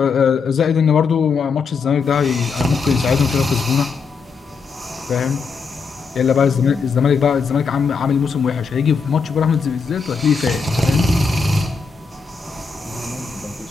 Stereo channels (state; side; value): quieter; right; 5.1 dB